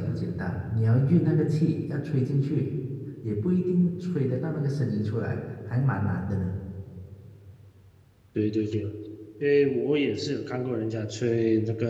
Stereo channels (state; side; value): identical; both; correlation 1.00